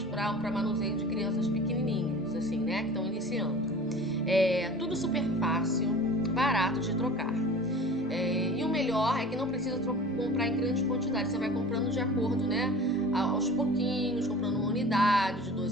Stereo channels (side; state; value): both; normal; correlation 0.41